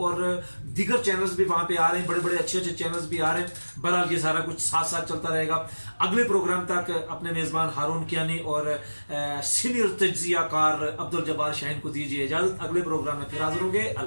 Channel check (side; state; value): both; inverted; correlation -1.00